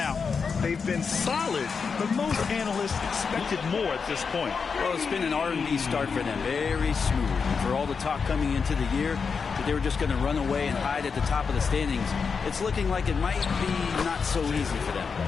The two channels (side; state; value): right; quieter; 5.5 dB